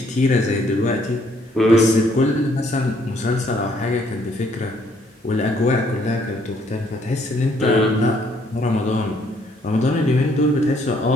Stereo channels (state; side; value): normal; both; correlation 0.67